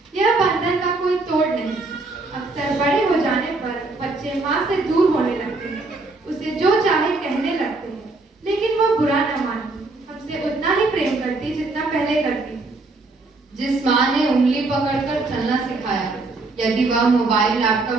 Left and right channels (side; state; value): left; quieter; 3.4 dB